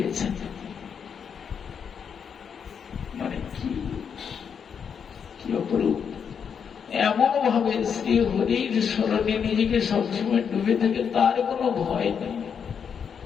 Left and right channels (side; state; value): right; quieter; 7.1 dB